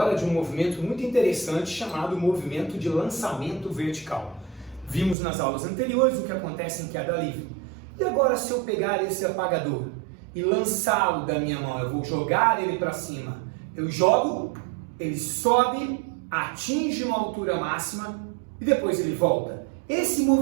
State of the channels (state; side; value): drops out; left; at 5.2 s